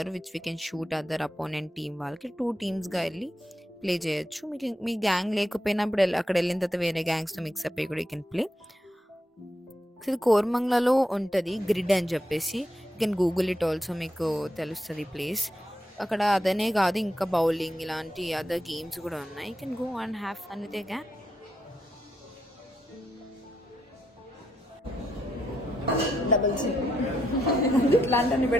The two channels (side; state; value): both; normal; correlation 0.81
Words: which we can shoot other opponent team వాళ్ళకి. 2 టీమ్స్గా వెళ్ళి ప్లే చేయొచ్చు. మీకు మీ గ్యాంగ్ లేకపోయినప్పుడు అక్కడ వెళ్ళిన తర్వాత వేరే గ్యాంగ్స్తో మిక్సప్ అయ్యి కూడా యూ కెన్ ప్లే. ఇది కోరమంగళలో ఉంటుంది గ్రిడ్ అని చెప్పేసి. You can Google it also, మీకు తెలుస్తుంది ప్లేస్. అక్కడ అదనే కాదు ఇంకా బౌలింగ్ ఇలాంటి అదర్ గేమ్స్ కూడా ఉన్నాయి. You can go and have fun with a gang. Double చిన్ ఇట్లాంటివన్నీ